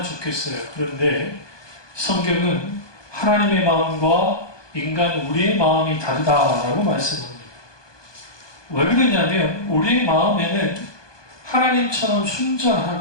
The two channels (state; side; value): late; right; 1.2 ms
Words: 좋겠어요. 그런데 성경은 하나님의 마음과 인간 우리의 마음이 다르다라고 말씀합니다. 왜 그러냐면 우리의 마음에는 하나님처럼